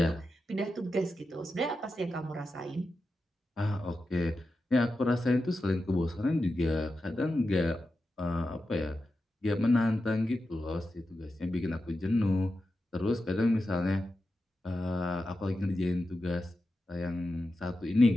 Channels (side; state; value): both; normal; correlation 0.90